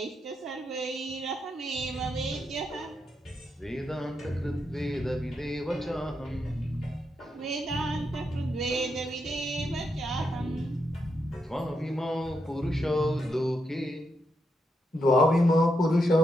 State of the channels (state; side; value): normal; both; correlation 0.82